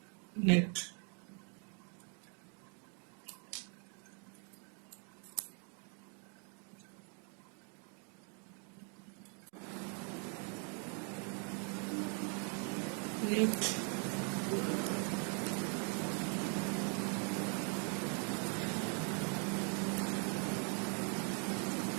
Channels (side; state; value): left; quieter; 39.9 dB